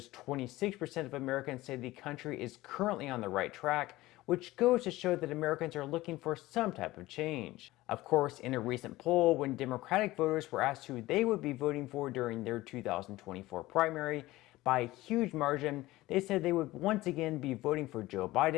26% of Americans say the country is currently on the right track, which goes to show that Americans are looking for some type of change. Of course, in a recent poll, when Democratic voters were asked who they would be voting for during their 2024 primary, by a huge margin, they said they would once again be voting for Joe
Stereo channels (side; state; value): right; quieter; 18.0 dB